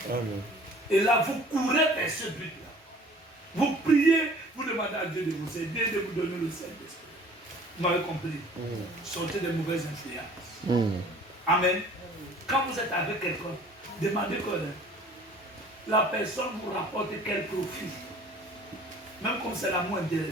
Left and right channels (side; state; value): both; normal; correlation 0.50